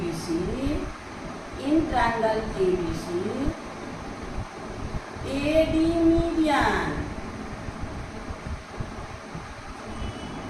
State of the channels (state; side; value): identical; both; correlation 1.00